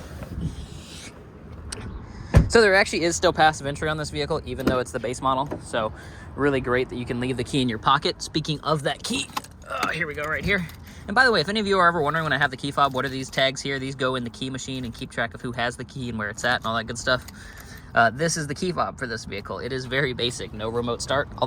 So there actually is still passive entry on this vehicle, even though it's the base model. So really great that you can leave the key in your pocket. Speaking of that key, here we go right here. And by the way, if any of you are ever wondering when I have the key fob, what are these tags here? These go in the key machine and keep track of who has the key and where it's at and all that good stuff. This is the key fob for this vehicle. It is very basic, no remote start,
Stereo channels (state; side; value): identical; both; correlation 1.00